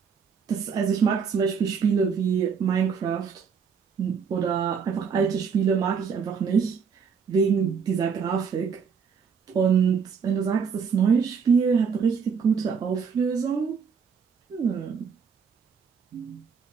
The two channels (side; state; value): left; quieter; 6.2 dB